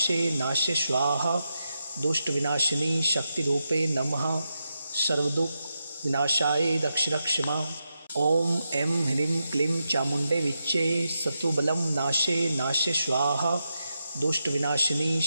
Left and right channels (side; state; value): both; inverted; correlation -0.87